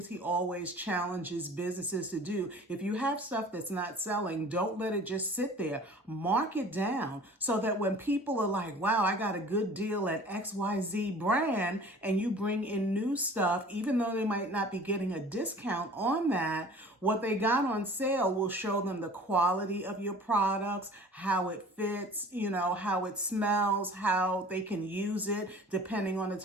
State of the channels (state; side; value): normal; both; correlation 0.45